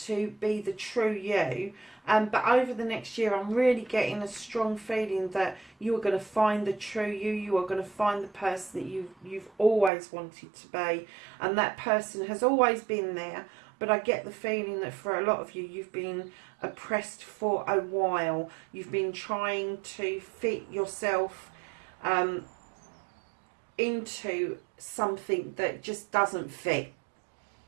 to be the true you. But over the next year, I'm really getting a strong feeling that you are going to find the true you. You are going to find the person that you've always wanted to be. And that person has always been there. But I get the feeling that for a lot of you, you've been oppressed for a while. You've been trying to fit yourself into something that just doesn't fit.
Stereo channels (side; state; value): left; drops out; at 9.9 s